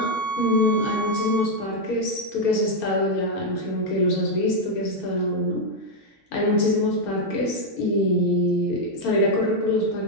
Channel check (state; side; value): normal; both; correlation 0.01